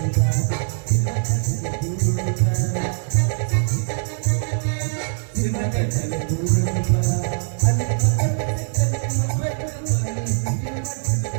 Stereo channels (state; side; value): silent; left; digital silence